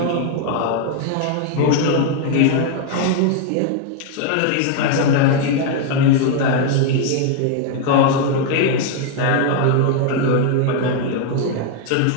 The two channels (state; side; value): different; both; correlation 0.01